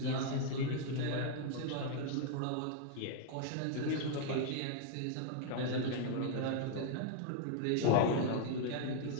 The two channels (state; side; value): different; both; correlation 0.00